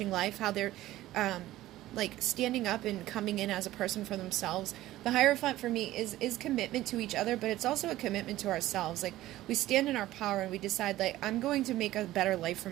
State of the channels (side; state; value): left; quieter; 15.4 dB